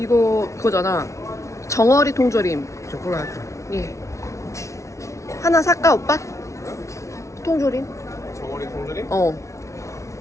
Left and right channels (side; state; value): right; late; 0.14 ms